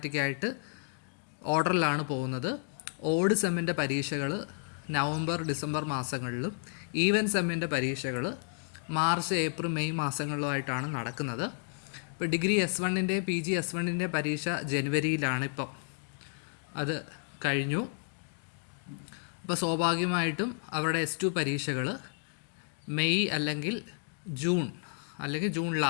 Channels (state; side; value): silent; right; 57 dB below the other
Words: ഓർഡറിലാണ് പോകുന്നത്. ഓഡ് സെമ്മിൻ്റെ പരീക്ഷകൾ നവംബർ ഡിസംബർ മാസങ്ങളിലും ഈവൻ സെമ്മിൻ്റെ പരീക്ഷകൾ മാർച്ച് ഏപ്രിൽ മെയ് മാസങ്ങളിലുമായിട്ടാണ് നടക്കുന്നത്. ഇപ്പോൾ ഡിഗ്രി S1-ൻ്റെ PG S1-ൻ്റെ പരീക്ഷ ജനുവരിയിലാണ്. ഇപ്പം അത് കഴിഞ്ഞു. അപ്പോൾ സ്വാഭാവികമായിട്ടും അവരുടെ S2 പരീക്ഷകൾ മെയ് അല്ലെങ്കിൽ ജൂൺ